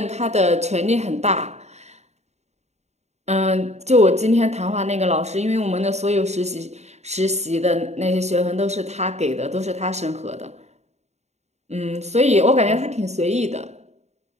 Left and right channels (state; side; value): late; left; 0.32 ms